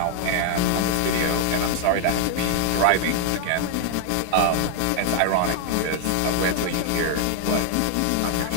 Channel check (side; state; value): both; different; correlation 0.00